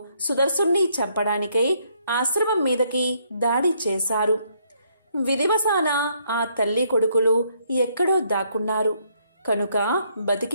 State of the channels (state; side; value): inverted; both; correlation -0.70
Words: సుదర్శుణ్ణి చంపడానికై ఆశ్రమం మీదకి దాడి చేశారు. విధివశాన ఆ తల్లి కొడుకులు ఎక్కడో దాక్కున్నారు కనుక